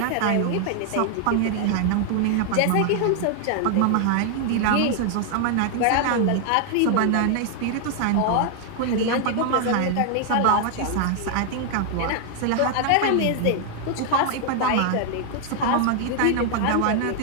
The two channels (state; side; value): different; both; correlation 0.00